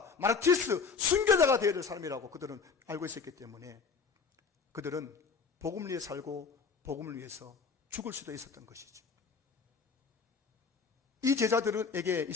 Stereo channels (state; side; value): quieter; right; 5.2 dB